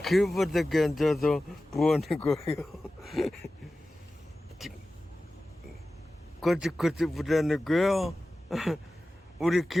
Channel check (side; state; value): both; normal; correlation 0.95